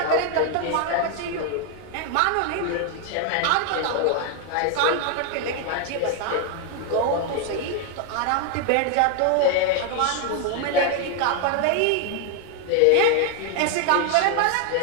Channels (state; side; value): different; both; correlation 0.01